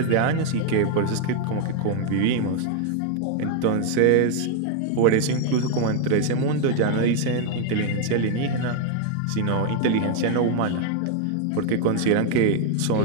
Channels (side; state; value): both; different; correlation 0.00